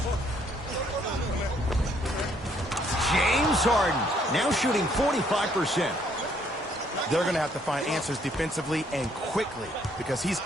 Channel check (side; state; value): both; normal; correlation 0.66